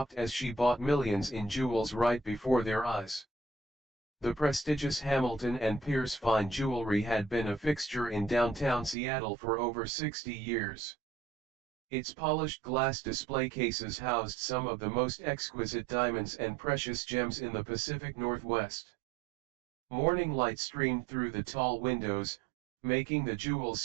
as she bought millions in jewels right before their eyes. The prestigious Hamilton and Pierce fine jewelry had been a fixture in downtown Seattle for over 60 years. Its polished glass display cases housed some of the most exquisite diamonds and precious gems in the Pacific Northwest. Morning light streamed through the tall windows, making the jewels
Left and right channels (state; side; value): drops out; left; at 9.0 s